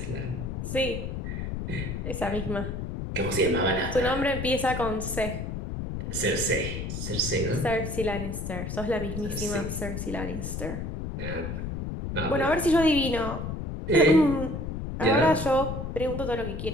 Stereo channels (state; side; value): noise; left; rumble, 5 dB below the sound